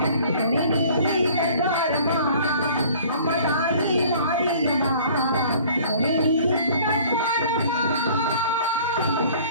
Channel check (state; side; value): inverted; both; correlation -0.51